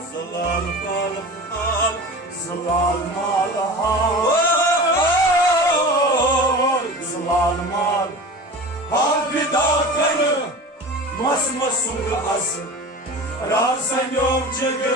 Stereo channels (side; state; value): both; normal; correlation 0.34